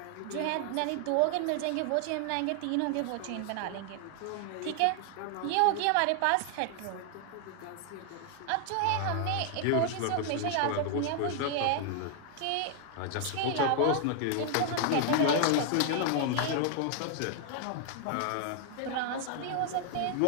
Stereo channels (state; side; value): different; both; correlation 0.00